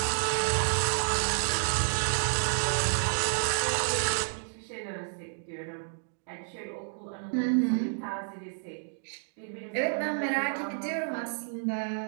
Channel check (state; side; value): silent; left; digital silence